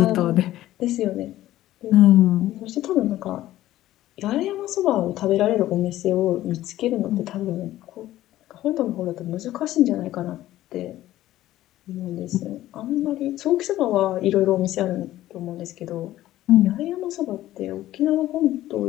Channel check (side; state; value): right; quieter; 14.5 dB